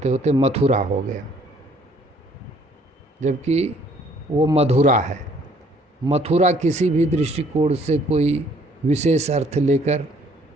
होते मथुरा हो गया, जबकि वो मधुरा है। मथुरा किसी भी दृष्टिकोण से कोई विशेष अर्थ लेकर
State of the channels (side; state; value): both; normal; correlation 0.61